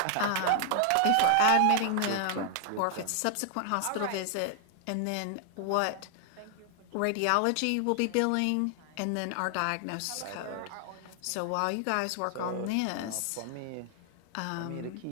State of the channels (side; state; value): both; different; correlation 0.00